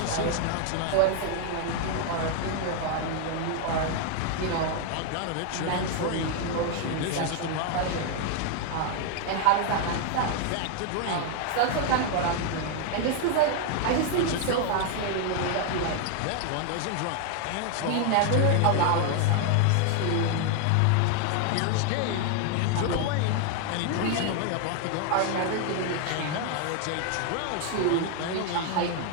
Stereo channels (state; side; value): different; both; correlation 0.00